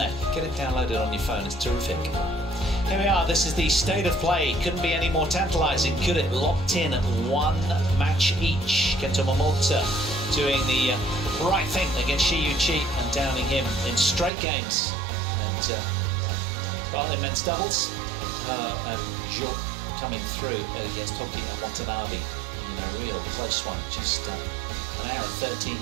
Get it downloaded on your phone, it's terrific. Here we are, this is the state of play. Couldn't be any more tantalising, could it? Locked in at one match each. Kanta Tsuneyama doing the right thing against Shi Feng and downing him in straight games. And, well, in men's doubles, and Jo coming through against Hoki and Watanabe in a real close one. Just an hour and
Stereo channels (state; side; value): drops out; left; at 14.3 s